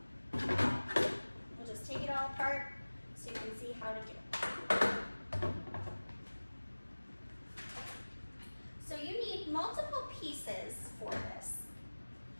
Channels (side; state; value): both; inverted; correlation -1.00